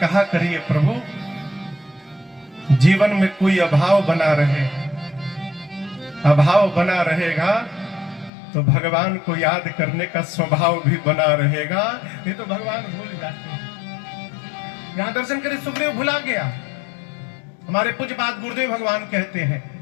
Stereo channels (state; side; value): drops out; right; at 8.3 s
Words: करिए प्रभु जीवन में कोई अभाव बना रहे, अभाव बना रहेगा तो भगवान को याद करने का स्वभाव भी बना रहेगा, नहीं तो भगवान भूल जाते हैं। यहां दर्शन करे सुग्रीव भुला गया। हमारे पूज्यपाद गुरुदेव भगवान कहते हैं